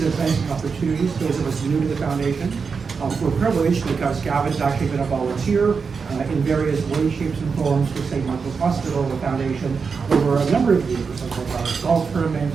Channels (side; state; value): left; quieter; 5.4 dB